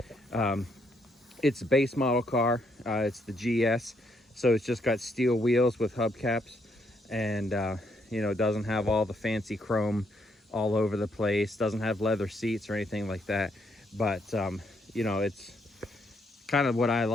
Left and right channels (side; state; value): both; normal; correlation 0.74